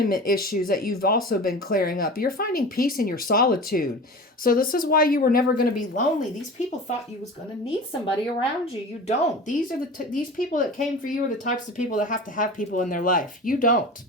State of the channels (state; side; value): normal; both; correlation 0.35